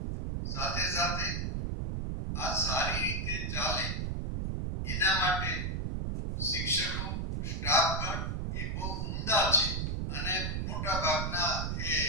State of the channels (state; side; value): noise; right; rumble, 1 dB below the sound